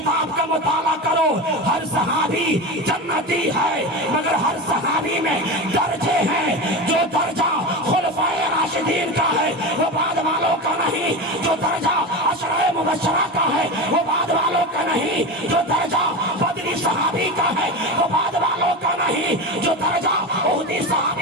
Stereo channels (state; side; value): normal; both; correlation 0.23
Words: کا مطالعہ کرو۔ ہر صحابی جنتی ہے، مگر ہر صحابی میں درجے ہیں۔ جو درجہ خلفائے راشدین کا ہے وہ بعد والوں کا نہیں، جو درجہ عشرہ مبشرہ کا ہے وہ بعد والوں کا نہیں، جو درجہ بدری صحابی کا ہے وہ بعد والوں کا نہیں، جو درجہ احدی